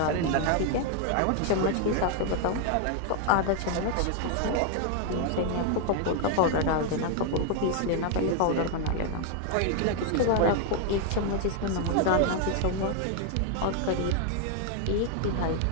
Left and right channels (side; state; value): both; different; correlation 0.00